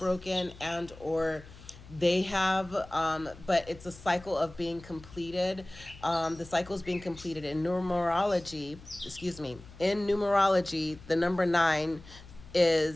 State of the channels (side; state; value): left; noise; hum, 19 dB below the sound